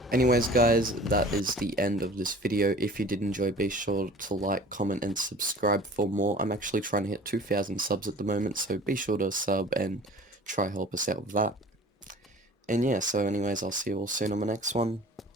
Anyways guys, that is the end of this video. If you did enjoy, be sure to like, comment, and subscribe for more. I'm actually trying to hit 2,000 subs at the moment, so be sure to sub and try help us out with that. And yeah, so anyways, I'll see you all soon on the next one.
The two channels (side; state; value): both; normal; correlation 0.45